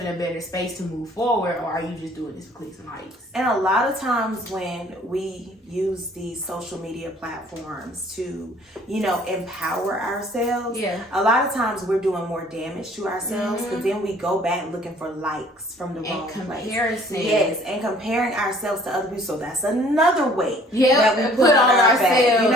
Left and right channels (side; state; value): both; normal; correlation 0.56